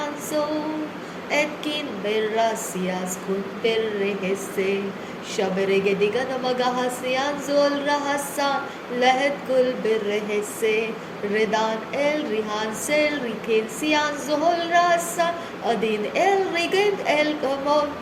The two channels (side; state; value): both; identical; correlation 1.00